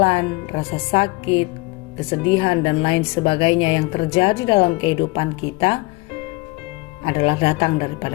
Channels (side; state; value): right; quieter; 23.5 dB